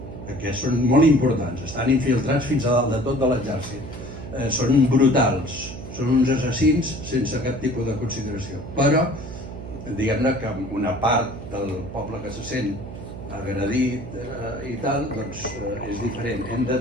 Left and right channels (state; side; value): noise; right; hum, 11 dB below the sound